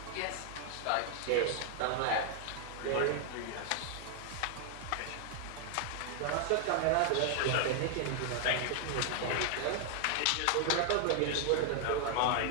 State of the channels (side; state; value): both; different; correlation 0.00